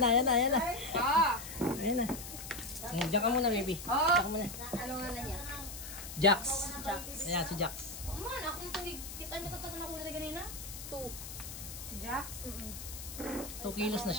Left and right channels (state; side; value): noise; left; hiss, 10 dB below the sound